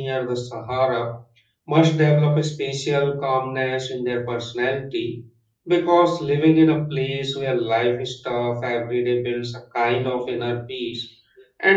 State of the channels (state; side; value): identical; both; correlation 1.00